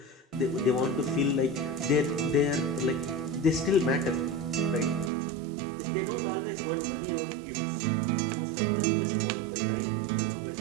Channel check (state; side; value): drops out; left; at 5.1 s